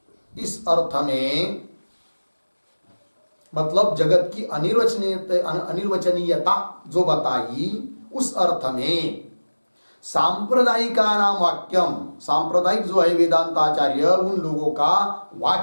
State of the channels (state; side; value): inverted; both; correlation -1.00